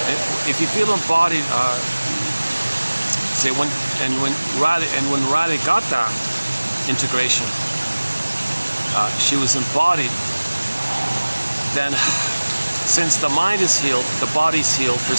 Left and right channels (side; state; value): both; inverted; correlation -1.00